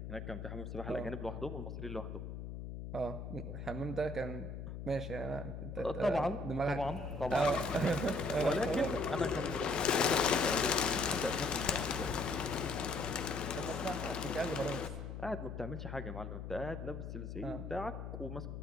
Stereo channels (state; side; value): noise; left; hum, 7 dB below the sound